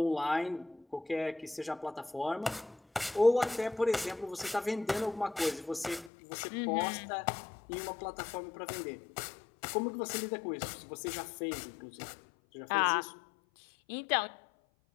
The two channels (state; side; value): drops out; right; at 6.1 s